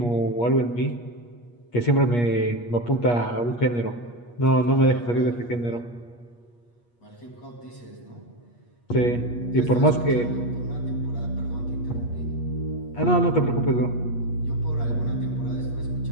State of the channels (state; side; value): late; right; 8.4 ms